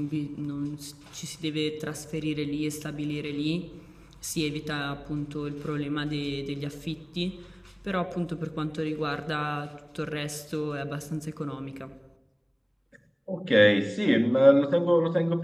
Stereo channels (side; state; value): both; identical; correlation 1.00